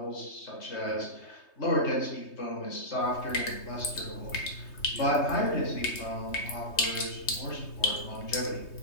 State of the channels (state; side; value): late; right; 3.2 ms